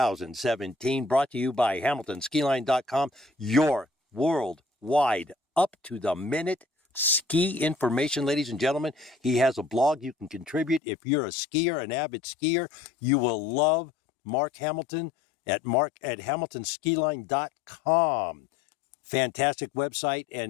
brought to you by HamiltonSkiline.com, your worldwide, up-to-the-minute ski information, ladies and gentlemen. He has a blog you can contribute. If you're a skier, an avid skier, you will love Mark Hamilton at HamiltonSkiline.com. Fantastic website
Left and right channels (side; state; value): right; drops out; at 10.8 s